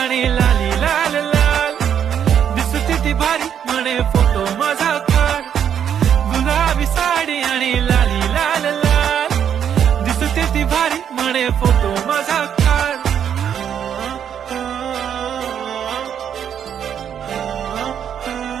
लाली लाल लाल दिसते ती भारी म्हणे फोटो माझा काढ. गुलाबी साडी आणि लाली लाल लाल दिसते ती भारी म्हणे फोटो माझा काढ.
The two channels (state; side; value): quieter; left; 8.8 dB